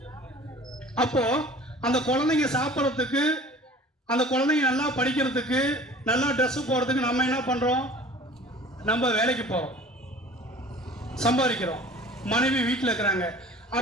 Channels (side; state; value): both; normal; correlation 0.45